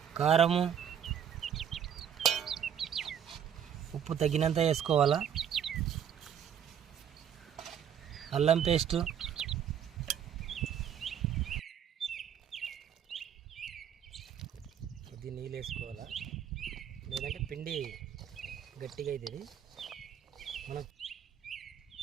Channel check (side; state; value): left; quieter; 8.7 dB